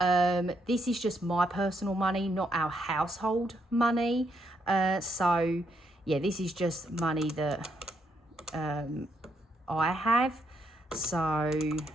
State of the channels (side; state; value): both; normal; correlation 0.76